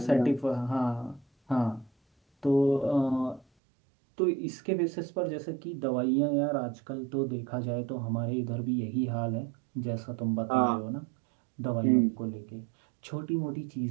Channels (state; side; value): drops out; left; at 3.5 s